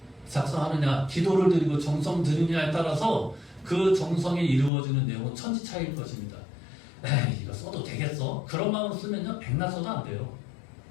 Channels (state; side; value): drops out; right; at 4.7 s